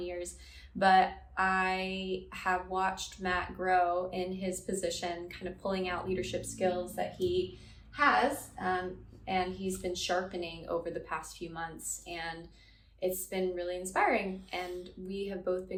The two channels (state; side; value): identical; both; correlation 1.00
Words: years. But I have watched Matt grow in his position, kind of pulling out leadership skills that he has, and he's been sharpening over the past few months. And it's been really inspiring, and we have both